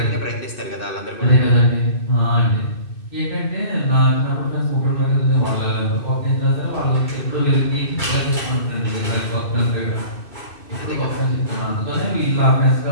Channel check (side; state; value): right; late; 2.6 ms